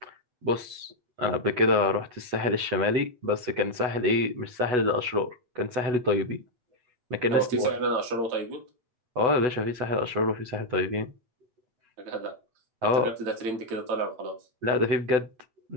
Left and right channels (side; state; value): left; late; 8.0 ms